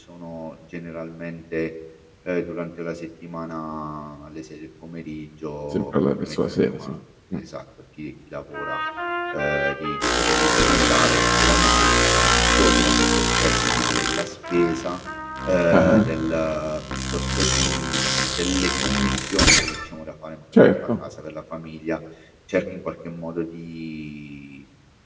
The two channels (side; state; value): both; identical; correlation 1.00